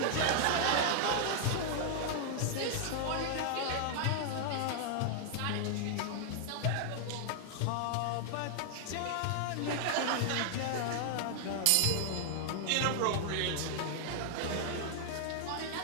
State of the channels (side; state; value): both; different; correlation -0.01